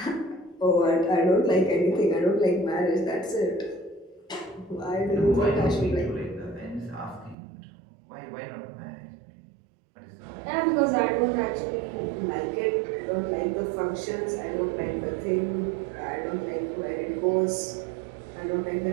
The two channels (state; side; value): drops out; left; at 7.4 s